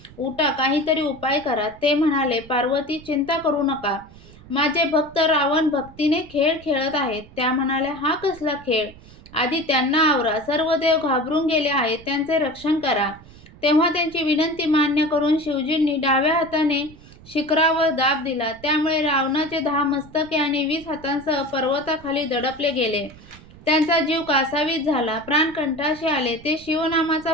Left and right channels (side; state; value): right; noise; rumble, 21 dB below the sound